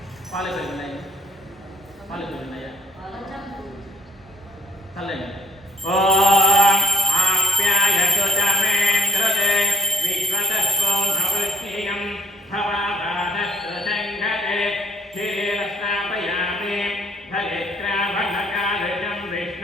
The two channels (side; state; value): both; normal; correlation 0.55